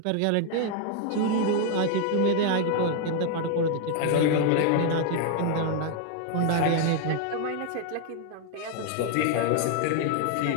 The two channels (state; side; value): different; both; correlation 0.00